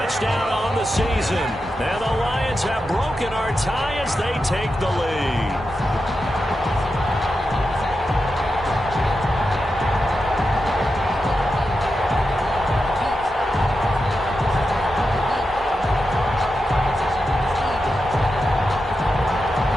on the season. And the Lions have broken our tie as they take the lead.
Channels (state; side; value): normal; both; correlation 0.89